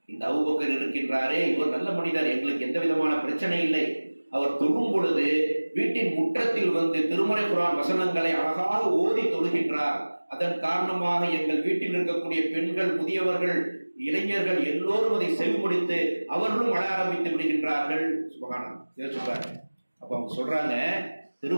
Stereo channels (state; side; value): inverted; both; correlation -1.00